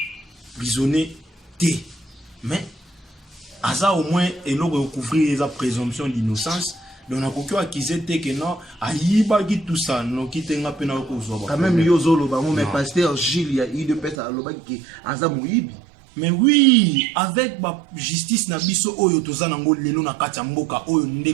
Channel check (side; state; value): left; drops out; at 14.2 s